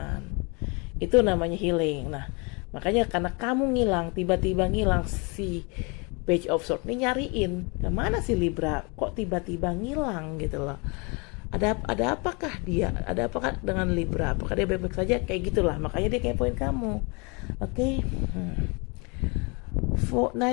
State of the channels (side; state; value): right; quieter; 30.7 dB